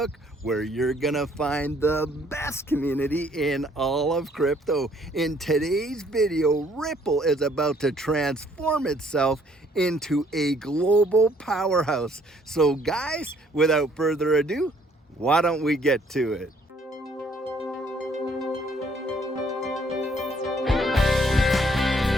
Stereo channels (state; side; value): normal; both; correlation 0.63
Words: where you're gonna find the best community in all of crypto. In today's video, Ripple is about to transform itself into a global powerhouse. So guys, without further ado, why don't we get to it?